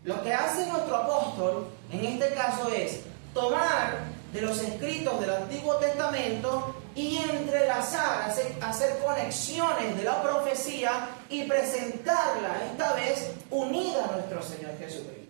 Lo que hace nuestro apóstol en este caso es tomar de los escritos del Antiguo Testamento y entrelazar, hacer conexiones de la profecía y presentarla esta vez unida a nuestro Señor Jesucristo.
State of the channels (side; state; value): left; silent; digital silence